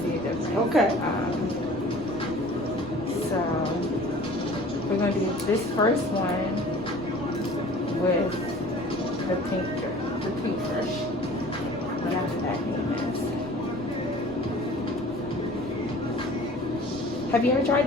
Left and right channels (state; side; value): normal; both; correlation 0.46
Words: see a difference. Okay. So we're going to do this first one with the pink brush. Whatever that name is. Have you ever tried